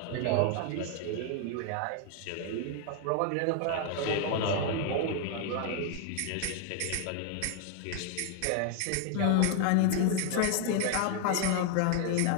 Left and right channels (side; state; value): both; different; correlation 0.00